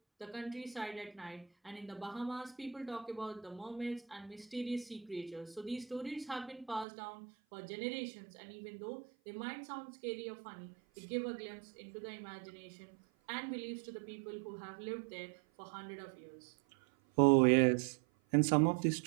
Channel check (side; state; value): left; drops out; at 6.9 s